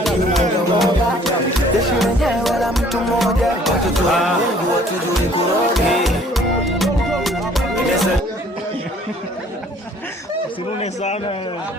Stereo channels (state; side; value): normal; both; correlation 0.57